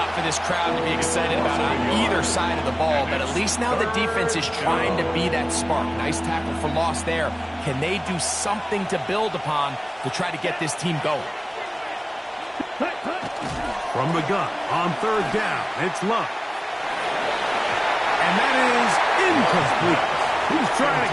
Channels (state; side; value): identical; both; correlation 1.00